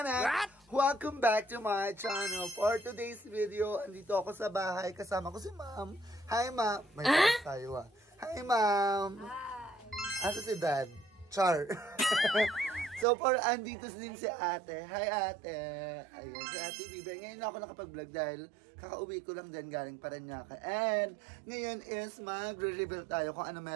What? Welcome back to my channel. For today's video, andito ako sa bahay, kasama ko si Ma'am. Hi Ma'am. May tayo ah. Hi Ma'am. Hi. Asa si Dad? Char. So for andito din si Ate. Hi Ate. Ayan si Ate Bibi. Ngayon na ako nakapag-vlog dahil kakauwi ko lang din galing Parañaque. And ngayon is magre-reveal tayo kung ano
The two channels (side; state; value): left; drops out; at 13.1 s